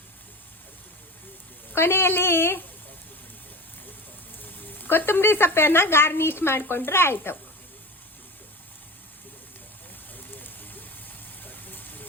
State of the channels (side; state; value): both; normal; correlation 0.31